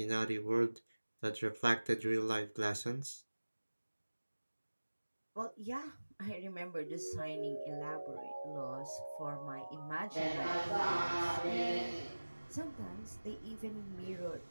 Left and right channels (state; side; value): inverted; both; correlation -1.00